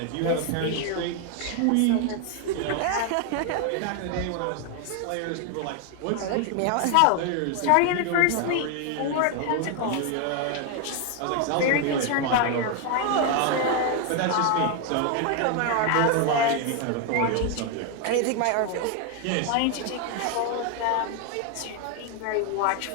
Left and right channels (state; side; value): different; both; correlation 0.01